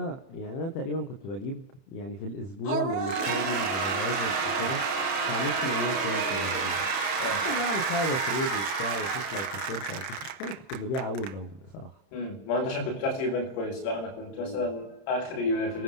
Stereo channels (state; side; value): late; right; 31 ms